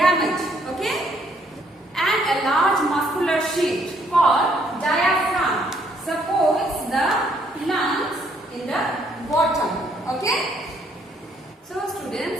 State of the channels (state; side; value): normal; both; correlation 0.68